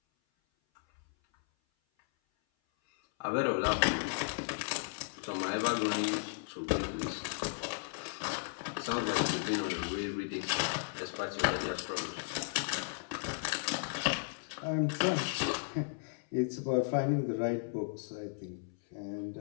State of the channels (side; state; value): right; silent; 54 dB below the other